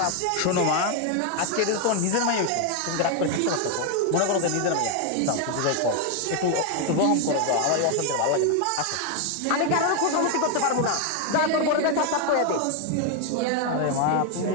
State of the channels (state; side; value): different; both; correlation 0.01